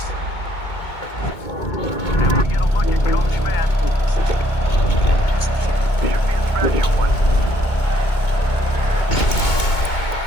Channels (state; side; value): late; right; 2.2 ms